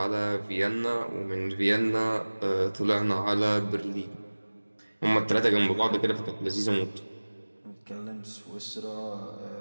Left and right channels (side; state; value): both; inverted; correlation -1.00